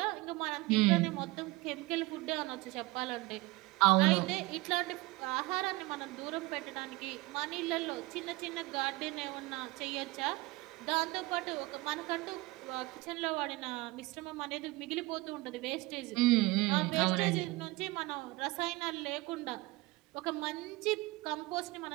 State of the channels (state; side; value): quieter; left; 22.0 dB